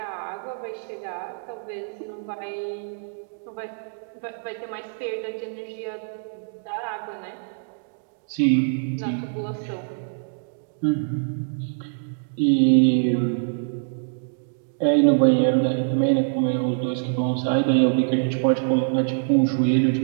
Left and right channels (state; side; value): silent; left; digital silence